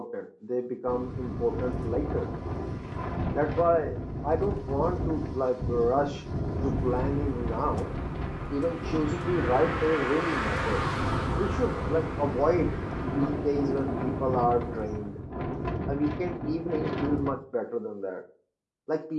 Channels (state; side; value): identical; both; correlation 1.00